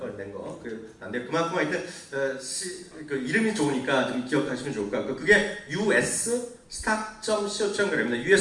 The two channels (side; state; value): both; identical; correlation 1.00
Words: 낸 거. 근데 그만큼 하여튼 그 이름이 좋으니까 좀 기억하시면 좋을 것 같고 그게 US stock.co.kr입니다.